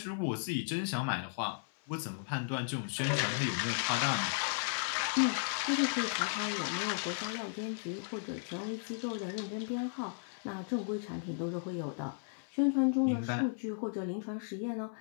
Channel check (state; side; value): silent; right; 54 dB below the other